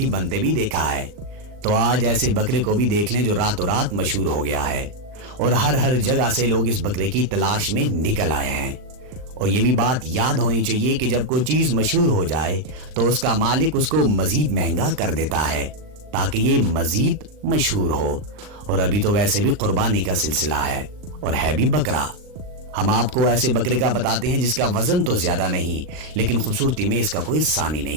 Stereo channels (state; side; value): late; left; 39 ms